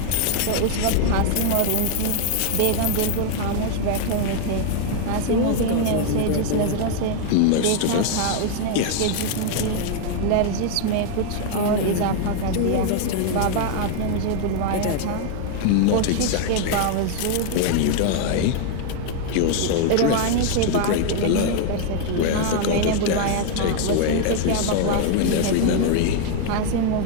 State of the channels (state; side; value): different; both; correlation 0.00